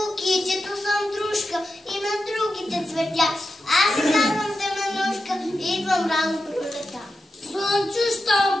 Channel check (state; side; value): normal; both; correlation 0.90